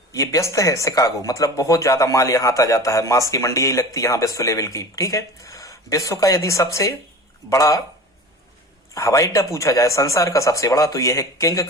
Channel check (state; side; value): normal; both; correlation 0.36